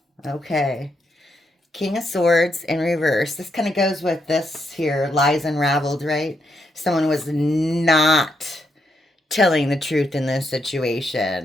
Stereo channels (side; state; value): both; normal; correlation 0.79